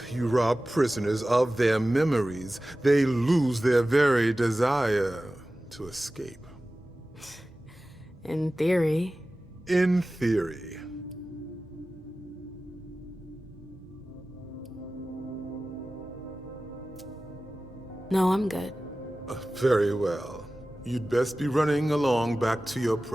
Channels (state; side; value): normal; both; correlation 0.96